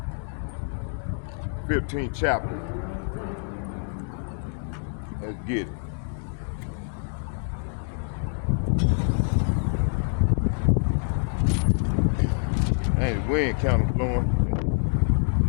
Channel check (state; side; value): silent; right; 61 dB below the other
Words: 15th chapter. Let's get it. Hey, the wind kind of blowing. Let